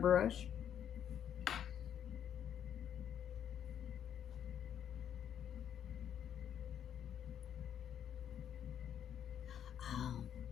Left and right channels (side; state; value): right; quieter; 9.4 dB